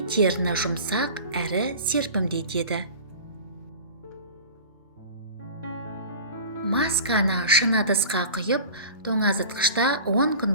теріні жұмсақ әрі серпімдетеді. Масканы шыны ыдысқа құйып, тоңазытқышта 10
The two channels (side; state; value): both; inverted; correlation -0.37